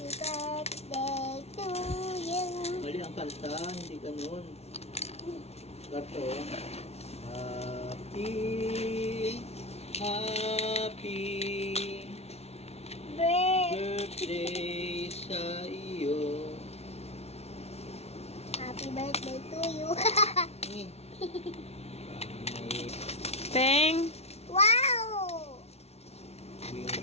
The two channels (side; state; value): right; late; 0.31 ms